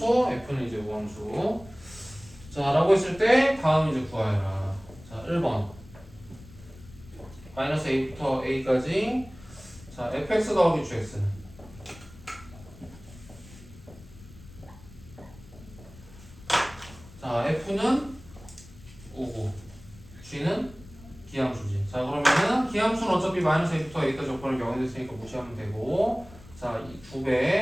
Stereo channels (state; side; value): noise; left; rumble, 20 dB below the sound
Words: f는 이제 우함수. 자, 라고 했을 때 다음 이제 구하여라. 자, 1번 마이너스 a부터 a까지. 자, fx 더하기 gx는 F는 우고 G는 기함수지. 자 그러면은 기함수는 어차피 마이너스 A부터 A까지 조건을 0이 됐으니까 무시하면 되고 자 이